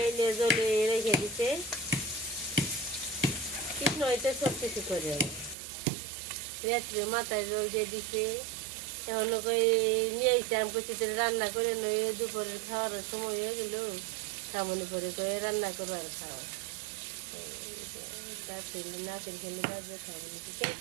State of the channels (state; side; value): drops out; left; at 5.6 s